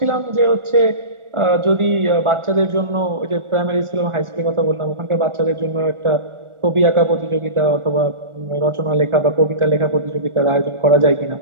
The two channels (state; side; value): late; left; 1.4 ms